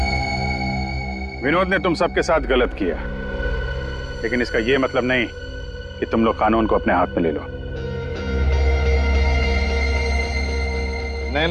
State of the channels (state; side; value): identical; both; correlation 1.00